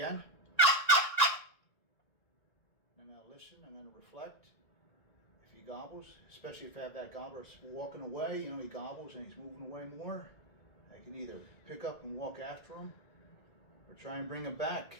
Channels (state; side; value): late; right; 1.9 ms